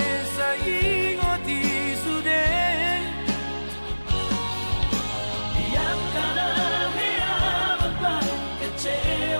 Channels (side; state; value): both; inverted; correlation -1.00